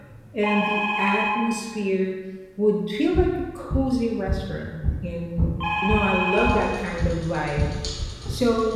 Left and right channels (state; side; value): identical; both; correlation 1.00